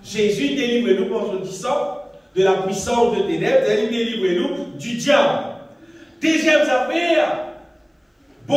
Jésus délivre-nous par son sang de la puissance des ténèbres, il délivre-nous du diable. Deuxième affaire,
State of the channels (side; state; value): both; identical; correlation 1.00